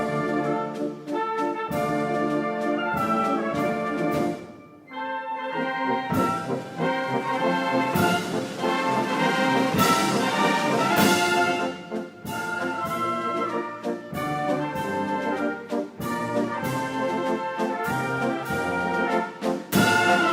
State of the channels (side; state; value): both; identical; correlation 1.00